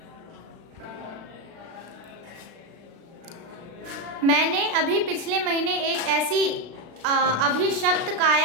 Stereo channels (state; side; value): late; left; 36 ms